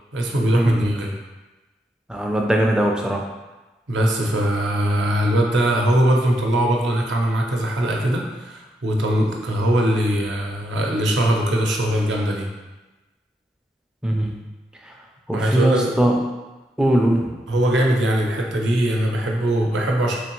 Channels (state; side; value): normal; both; correlation 0.81